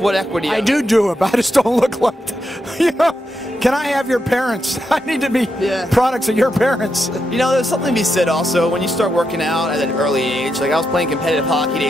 equity. I do it, but I just don't look like that. You know? Can I have your parents? I need to be products of your parents. You know, there's something to be said also when you start working out at an early age. Like I was playing competitive hockey at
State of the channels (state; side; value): normal; both; correlation 0.84